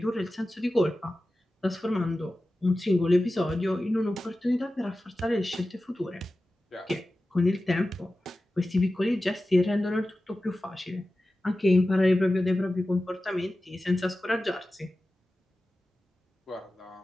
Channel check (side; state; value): both; normal; correlation 0.95